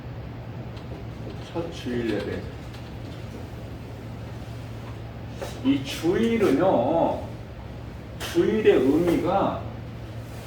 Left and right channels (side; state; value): both; identical; correlation 1.00